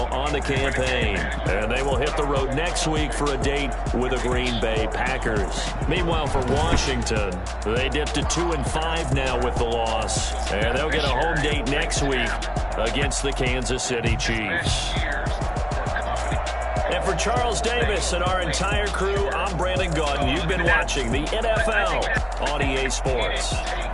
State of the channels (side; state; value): both; identical; correlation 1.00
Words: on the campaign. And they will hit the road next week for a date with the Green Bay Packers. Meanwhile, for Washington, they dipped to 2-5 now with the loss. And they'll get a home date next week against the Kansas City Chiefs. And for Charles Davis and our entire crew, I'm Brandon Gaudin. You've been watching the NFL on EA Sports.